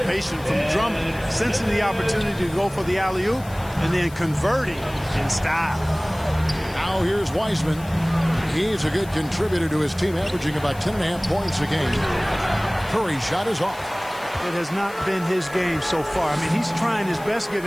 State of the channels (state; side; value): noise; left; hiss, 20 dB below the sound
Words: from Drummond, sensing the opportunity to go for the alley-oop and then converting in style. Now here's Wiseman. He's a good contributor to his team, averaging about 10.5 points a game. Curry's shot is off. It has not been his game so far. I mean, he's trying his best,